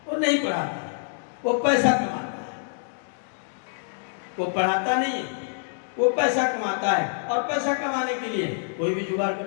वो नहीं पढ़ाता है, वो पैसा कमाता है। वो पढ़ाता नहीं है, वो पैसा कमाता है, और पैसा कमाने के लिए कोई भी जुगाड़ कर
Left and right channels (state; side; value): silent; right; digital silence